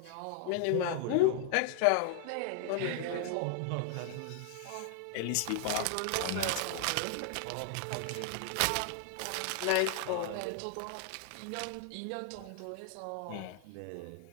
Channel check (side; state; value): both; different; correlation 0.00